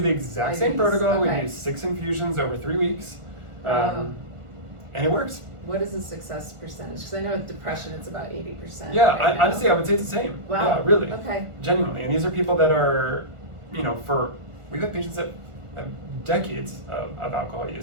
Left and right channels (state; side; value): late; left; 1.5 ms